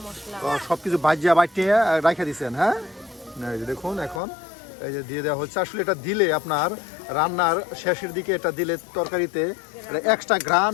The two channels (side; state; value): right; drops out; at 4.2 s